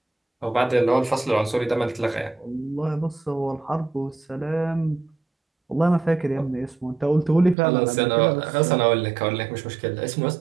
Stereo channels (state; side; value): drops out; left; at 7.6 s